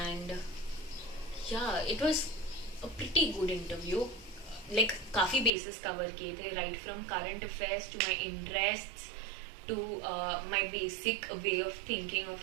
And yeah, it was a pretty good interview. Like, काफ़ी bases cover किए थे, right from current affairs to my interests to my basic way of thinking of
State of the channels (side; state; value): left; drops out; at 5.5 s